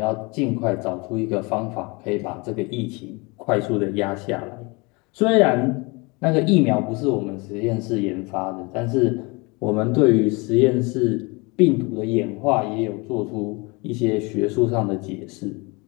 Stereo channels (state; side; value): quieter; right; 27.8 dB